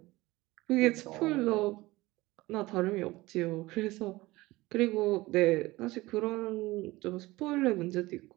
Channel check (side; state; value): left; quieter; 19.9 dB